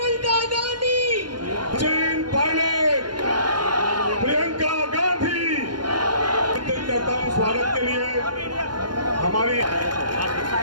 गांधी, सचिन पायलट, प्रियंका गांधी। करता हूं स्वागत के लिए हमारी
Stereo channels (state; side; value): late; left; 0.71 ms